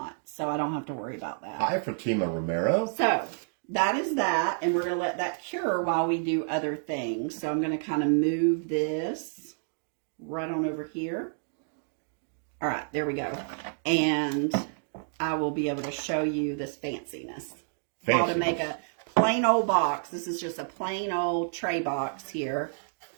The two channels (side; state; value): left; silent; digital silence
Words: So I don't have to worry about that. Hi, Fatima Romero. So that is that. And we're going to let that cure while we do other things. So I'm going to kind of move this right on over here. All right, there we go. And I will be able to show you this fanciness. How to make a plain old box. This is just a plain old tray box here.